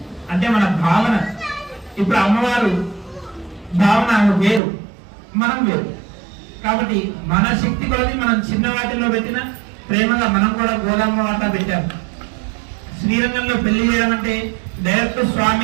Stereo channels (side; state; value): left; drops out; at 4.6 s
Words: అంటే మన భావన. ఇప్పుడు అమ్మవారు భావన వేరు, మనం వేరు. కాబట్టి మన శక్తి కొలది మనం చిన్న వాటిల్లో పెట్టిన ప్రేమగా మనం కూడా గోదామ్మ వాట పెట్టాము. శ్రీరంగంలో పెళ్లి చేయడం అంటే డైరెక్ట్